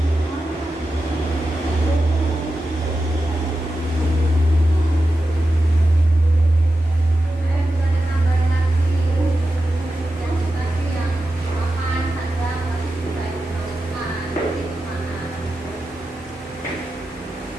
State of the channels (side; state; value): both; normal; correlation 0.91